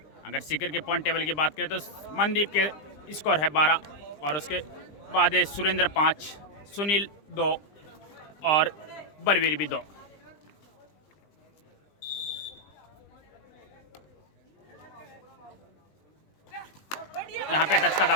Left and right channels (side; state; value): right; late; 20 ms